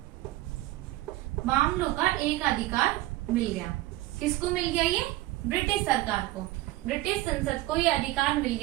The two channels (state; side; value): quieter; left; 17.3 dB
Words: मामलों का एक अधिकार मिल गया। किसको मिल गया? ये ब्रिटिश सरकार को, ब्रिटिश संसद को ये अधिकार मिल